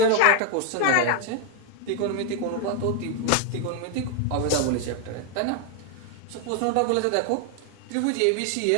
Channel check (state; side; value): different; both; correlation 0.00